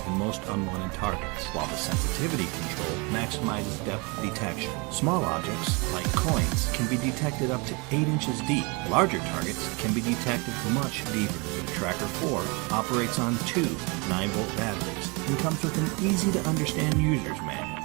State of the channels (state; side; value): quieter; left; 29.5 dB